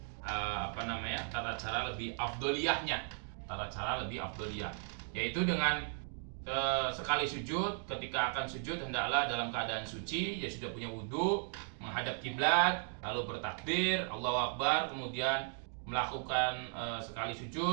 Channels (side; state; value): left; silent; 53 dB below the other